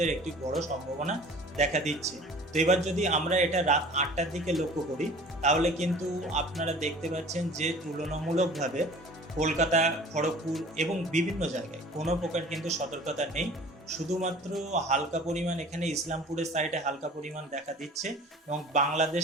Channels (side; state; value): both; normal; correlation 0.45